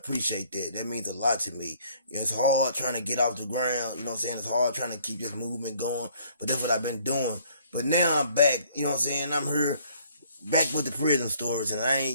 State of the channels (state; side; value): inverted; both; correlation -0.61